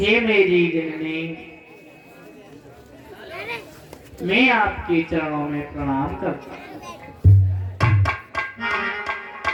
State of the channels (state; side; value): identical; both; correlation 1.00